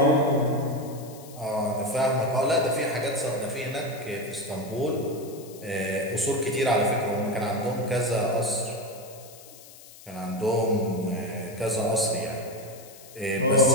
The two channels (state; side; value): noise; left; hiss, 20 dB below the sound